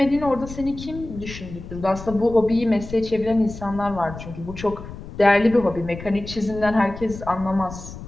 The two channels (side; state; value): left; noise; rumble, 12 dB below the sound